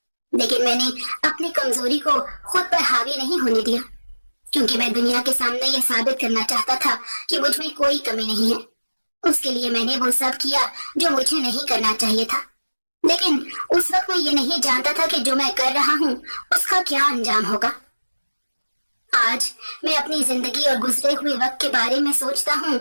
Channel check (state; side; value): inverted; both; correlation -1.00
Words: लेकिन मैंने अपनी कमजोरी को खुद पर हावी नहीं होने दिया, क्योंकि मैं दुनिया के सामने यह साबित करना चाहता था कि मुझ में कोई कमी नहीं है। उसके लिए मैंने वो सब किया जो मुझे नहीं करना चाहिए था। लेकिन उस वक्त मैं ये नहीं जानता था कि जो मैं कर रहा हूँ उसका क्या अंजाम होगा। आज मैं अपनी जिंदगी और गुजरे हुए वक्त के बारे में सोचता हूँ